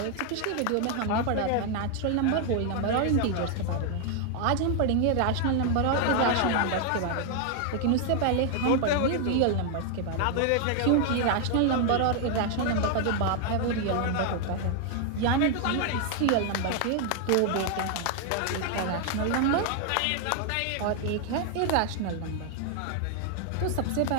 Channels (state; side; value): different; both; correlation 0.00